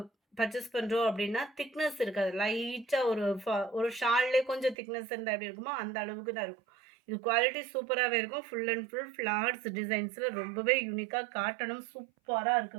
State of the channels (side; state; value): left; drops out; at 4.8 s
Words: பர்ச்சேஸ் பண்ணுறோம் அப்படின்னா திக்னஸ் இருக்காது. லைட்டாக ஒரு ஷால்லே கொஞ்சம் திக்னஸ் இருந்தால் எப்படி இருக்குமோ அந்த அளவுக்கு தான் இருக்கும். இது குவாலிட்டி சூப்பராகவே இருக்கும். ஃபுல் அண்ட் ஃபுல் ஃப்ளார்ஸ் டிசைன்ஸில் ரொம்பவே யூனிக்காக காட்டணும். சூப்பராக